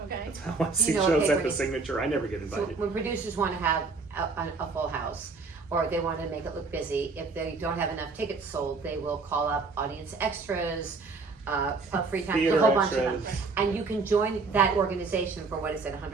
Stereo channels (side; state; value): left; quieter; 4.2 dB